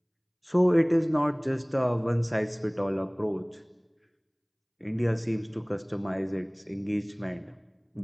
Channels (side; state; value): both; identical; correlation 1.00